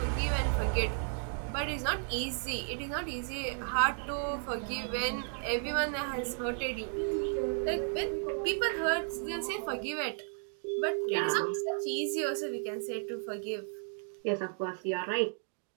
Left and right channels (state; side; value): silent; left; 55 dB below the other